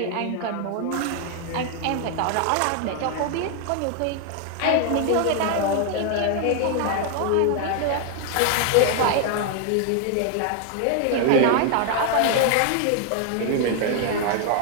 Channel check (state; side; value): different; both; correlation 0.00